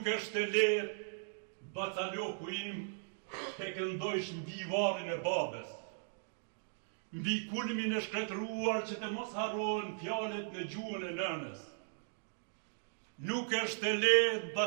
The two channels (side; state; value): left; silent; digital silence